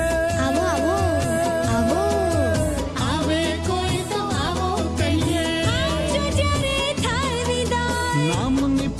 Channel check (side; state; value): both; identical; correlation 1.00